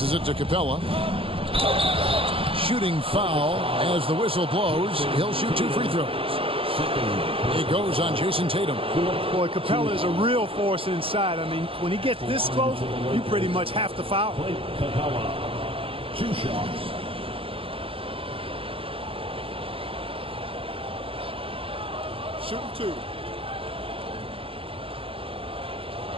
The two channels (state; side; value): late; left; 0.27 ms